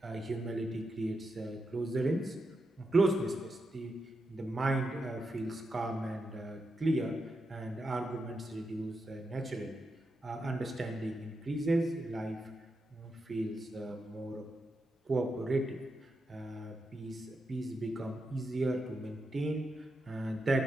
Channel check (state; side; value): normal; both; correlation 0.86